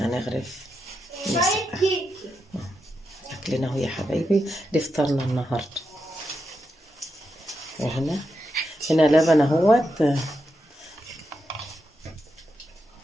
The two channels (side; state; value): both; normal; correlation 0.86